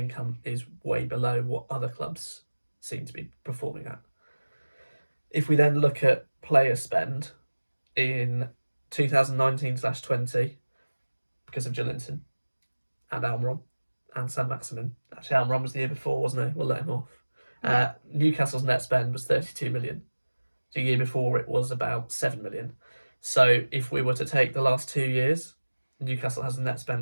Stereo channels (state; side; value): inverted; both; correlation -1.00